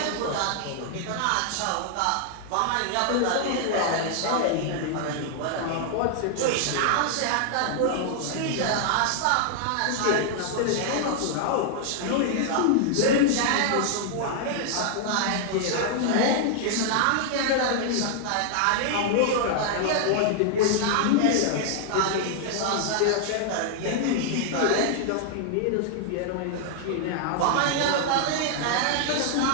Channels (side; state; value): both; different; correlation 0.00